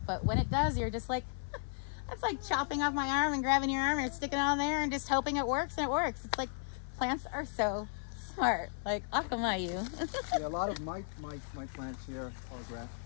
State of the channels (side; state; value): right; silent; 54 dB below the other